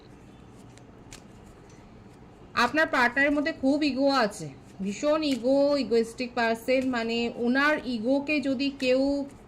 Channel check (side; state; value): both; identical; correlation 1.00